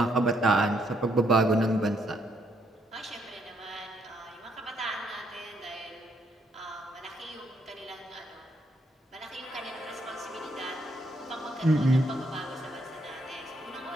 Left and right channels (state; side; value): normal; both; correlation 0.73